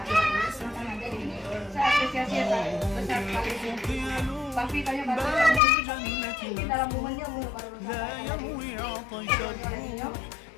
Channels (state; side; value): drops out; right; at 5.6 s